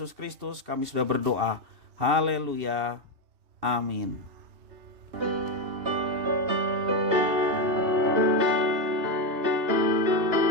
Kristus kami sudah berdoa. Haleluya. Amin.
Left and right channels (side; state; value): left; late; 2.7 ms